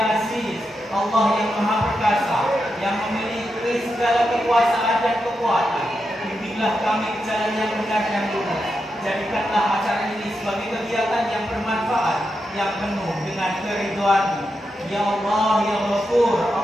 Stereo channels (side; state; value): both; normal; correlation 0.86